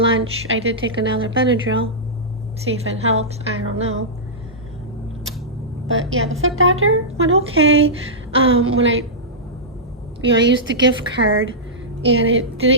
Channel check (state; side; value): normal; both; correlation -0.13